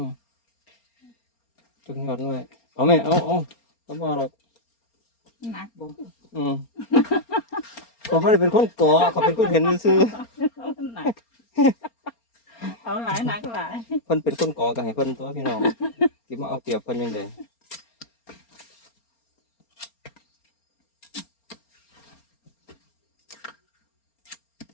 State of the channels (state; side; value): late; right; 4.3 ms